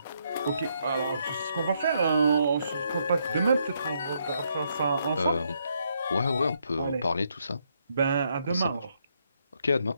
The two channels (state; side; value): inverted; both; correlation -0.76